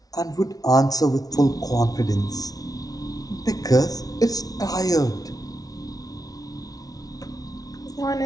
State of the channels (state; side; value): late; right; 0.18 ms